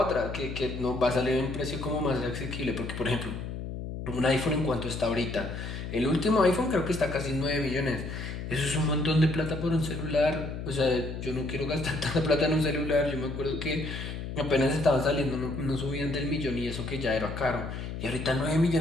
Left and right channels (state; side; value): noise; left; hum, 7 dB below the sound